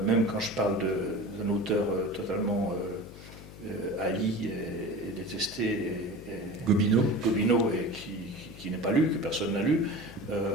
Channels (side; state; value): left; noise; hum, 16 dB below the sound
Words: même quand je parle d'un auteur totalement haï et détesté, Gobineau, et qui n'est pas lu, que personne n'a lu,